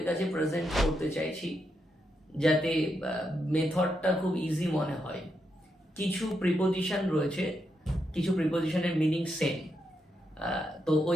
কাছে প্রেজেন্ট করতে চাইছি যাতে মেথডটা খুব ইজি মনে হয়। কিছু প্রিপোজিশন রয়েছে, কিছু প্রিপোজিশনের মিনিং সেম, তো ওই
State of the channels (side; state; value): both; normal; correlation 0.82